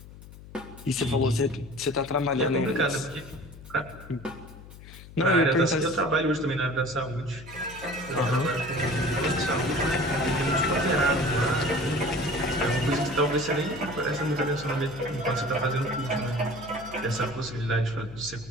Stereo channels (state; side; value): noise; left; hum, 17 dB below the sound